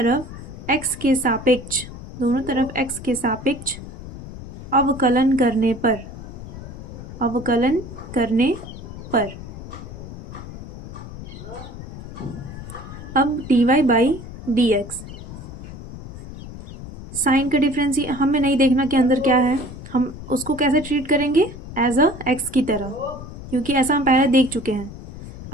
x के सापेक्ष अवकलन करने पर अब dy by d x, sine का डिफरेंस हमें नहीं देखना कि अंदर क्या है, हम उसको कैसे ट्रीट करेंगे एज अ एक्स की तरह, क्योंकि ऐसा हम पहले देख चुके हैं।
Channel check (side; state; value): left; noise; rumble, 12 dB below the sound